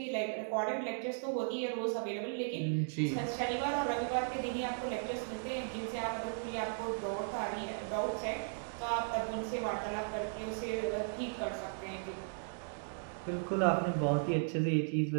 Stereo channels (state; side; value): silent; left; digital silence